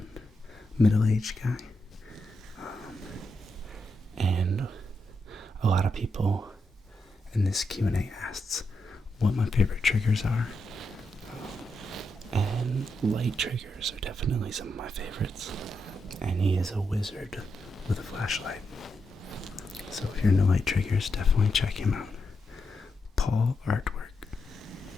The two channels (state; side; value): normal; both; correlation 0.84